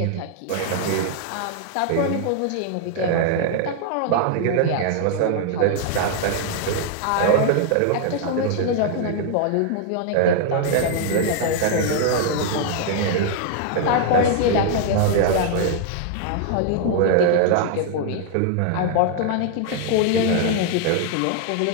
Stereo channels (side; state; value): both; different; correlation 0.00